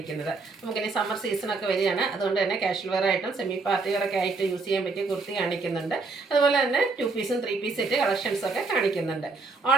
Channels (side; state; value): left; quieter; 4.0 dB